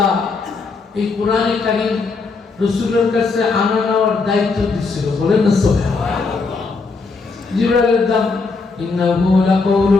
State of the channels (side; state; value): right; quieter; 4.2 dB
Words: এই কোরআনে কারীম রাসূলের কাছে আনা নেওয়ার দায়িত্ব দিয়েছিল, বলেন না সুবহানাল্লাহ। জিবরাইলের দাম, ইন্নাহু লাকাউলু